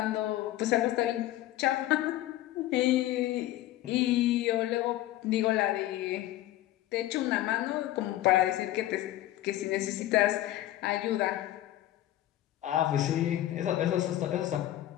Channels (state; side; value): quieter; right; 14.4 dB